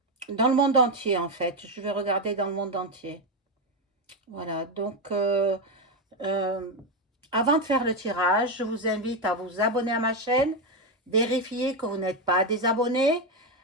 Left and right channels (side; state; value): both; normal; correlation 0.08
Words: dans le monde entier, en fait. Je vais regarder dans le monde entier. Voilà. Donc, euh, avant de faire le tirage, je vous invite à vous abonner à ma chaîne, vérifier que vous n'êtes pas désabonné.